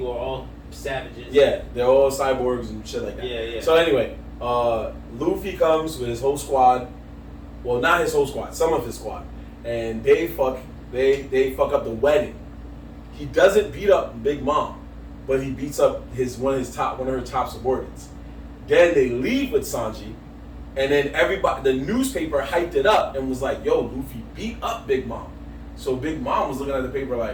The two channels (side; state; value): both; identical; correlation 1.00